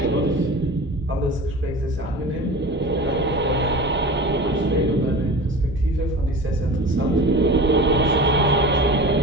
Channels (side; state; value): both; normal; correlation 0.34